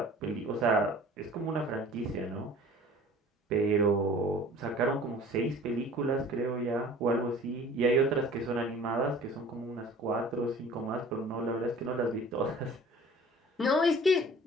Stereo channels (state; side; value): normal; both; correlation 0.47